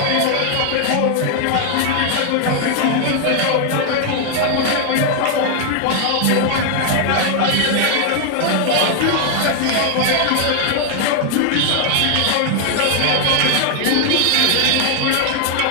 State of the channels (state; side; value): different; both; correlation 0.00